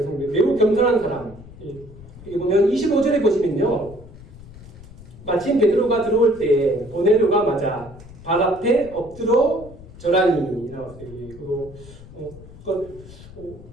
매우 겸손한 사람. 여기 보면 25절에 보시면요. 마침 베드로가 들어올 때 고넬료가 맞아 발 앞에 엎드려 절하니 나왔어요.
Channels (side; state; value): left; noise; rumble, 18 dB below the sound